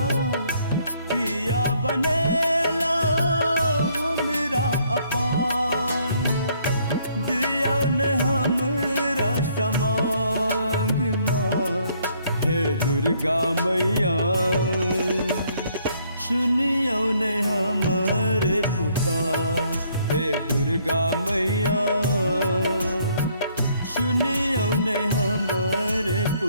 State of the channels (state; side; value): inverted; both; correlation -0.66